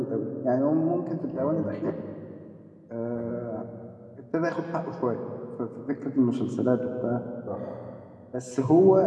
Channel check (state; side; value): identical; both; correlation 1.00